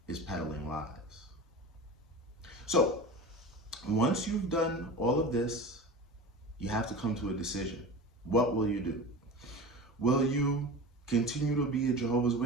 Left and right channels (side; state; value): both; normal; correlation 0.31